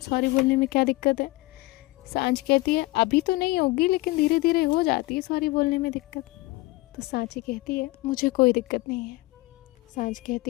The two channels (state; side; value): quieter; right; 21.2 dB